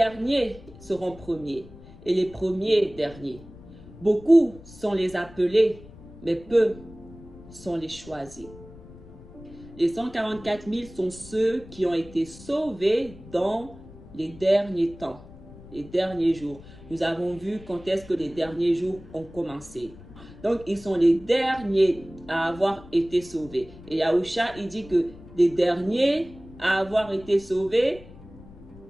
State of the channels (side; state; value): left; noise; rumble, 19 dB below the sound